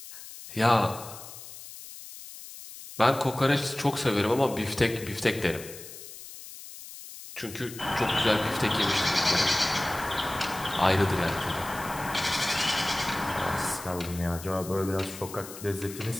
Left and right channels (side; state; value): left; noise; hiss, 14 dB below the sound